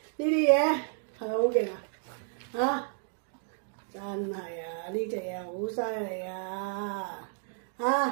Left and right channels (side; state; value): left; silent; digital silence